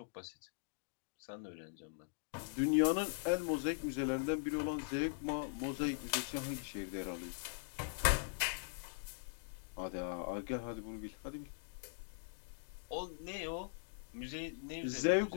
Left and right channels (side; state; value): right; silent; digital silence